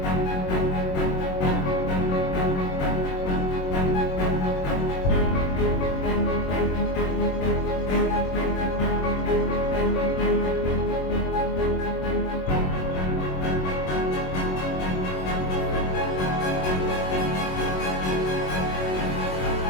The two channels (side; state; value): right; late; 21 ms